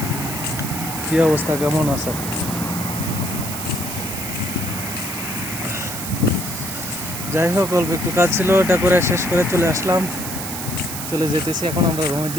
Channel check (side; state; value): right; noise; hiss, 6 dB below the sound